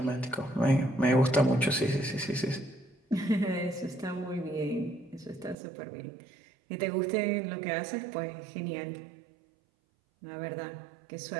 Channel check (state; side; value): drops out; left; at 5.6 s